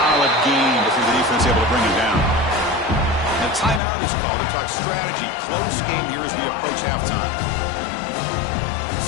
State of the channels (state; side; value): drops out; right; at 3.8 s